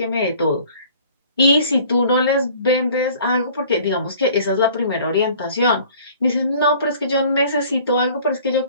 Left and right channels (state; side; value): inverted; both; correlation -0.51